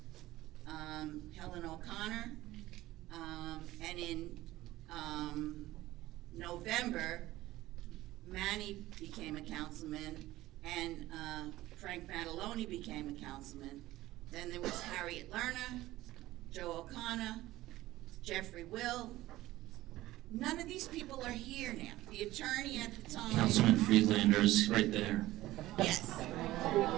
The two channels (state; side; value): quieter; left; 16.6 dB